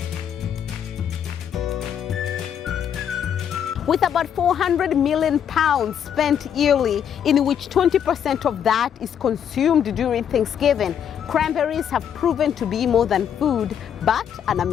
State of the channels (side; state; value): right; quieter; 8.7 dB